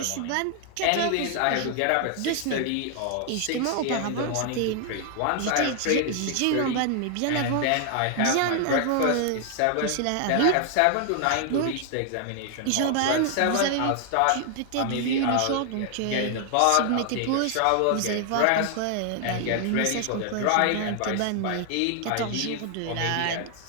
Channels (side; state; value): both; different; correlation 0.00